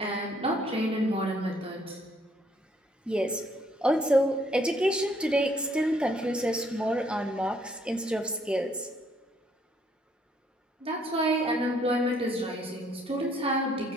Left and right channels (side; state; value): both; normal; correlation 0.67